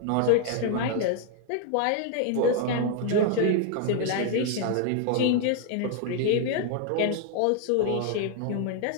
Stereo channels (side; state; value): both; different; correlation 0.00